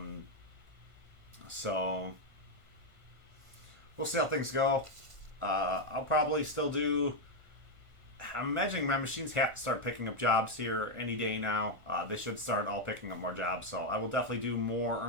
So, we'll see how things go. I'll probably still do I'm imagining my machines have to start picking up jobs here any day now. They should start all picking up more jobs, so I will definitely do more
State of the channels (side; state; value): left; late; 1.5 ms